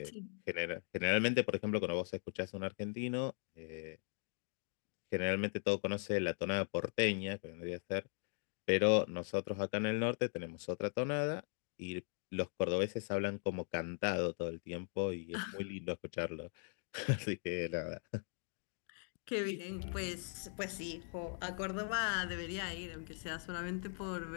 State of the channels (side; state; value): right; silent; 51 dB below the other